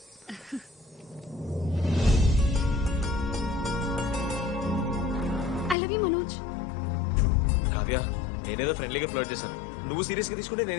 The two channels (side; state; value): right; drops out; at 5.8 s